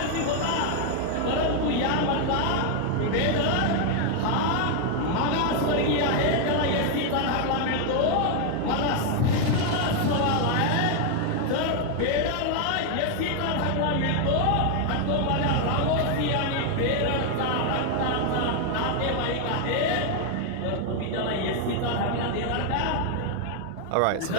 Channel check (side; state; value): both; different; correlation 0.00